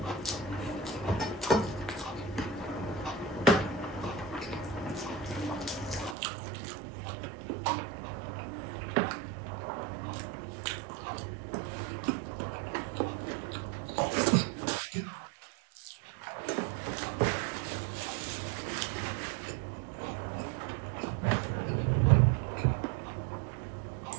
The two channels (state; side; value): drops out; left; at 6.2 s